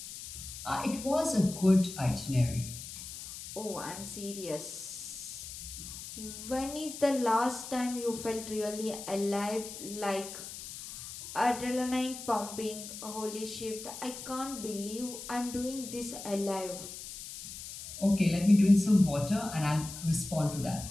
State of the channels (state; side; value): noise; left; hiss, 11 dB below the sound